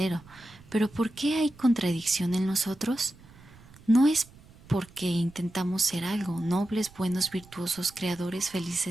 pero ¿por qué hay contradicción en nosotros? No es porque intentamos ser algo, nobles, buenos, virtuosos, creadores,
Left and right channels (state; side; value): noise; right; rumble, 23 dB below the sound